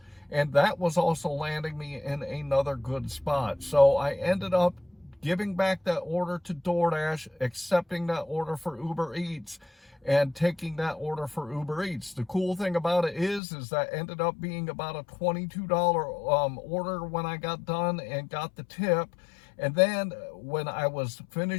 and that was also landing me in another good spot. So I ended up giving back that order to DoorDash, accepting that order for Uber Eats, and taking that order for Uber Eats. The cool thing about it is that ended up being about a $22 order when I got done and got the tip. And then when I was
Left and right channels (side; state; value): right; drops out; at 13.4 s